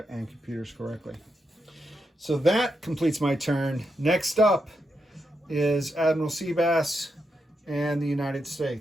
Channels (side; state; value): both; normal; correlation 0.84